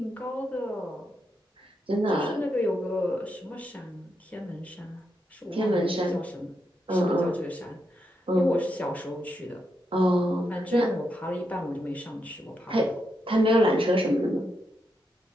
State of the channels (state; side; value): normal; both; correlation 0.83